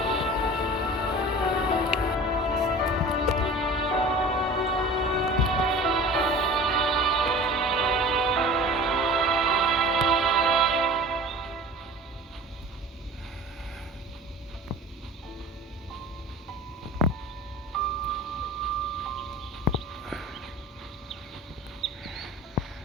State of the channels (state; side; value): normal; both; correlation 0.40